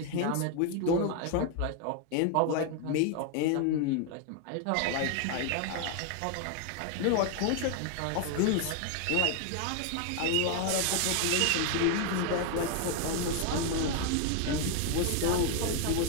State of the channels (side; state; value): both; different; correlation 0.01